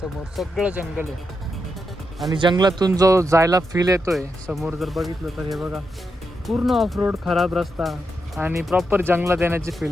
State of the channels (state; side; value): normal; both; correlation 0.85